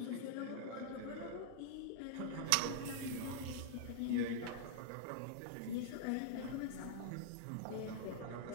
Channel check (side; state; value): both; different; correlation -0.01